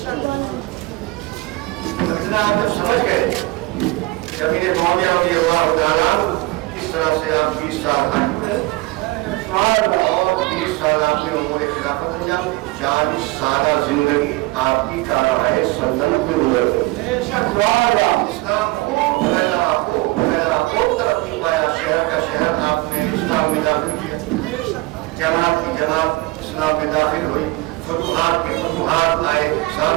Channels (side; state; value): left; quieter; 21.7 dB